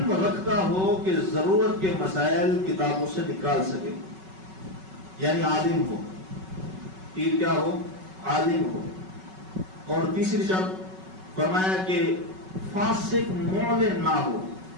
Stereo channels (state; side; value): late; left; 5.3 ms